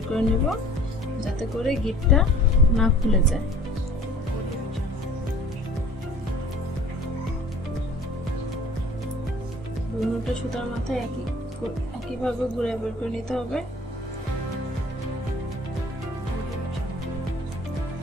করে নেব, যাতে করে গিটটা না খুলে যায়। দুটো সুতার মাথায় একইভাবে ঘুরে বের করে নিতে হবে।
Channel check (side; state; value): both; normal; correlation 0.50